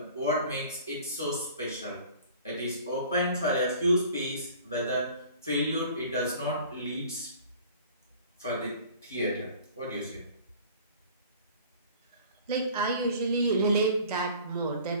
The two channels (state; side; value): inverted; both; correlation -0.47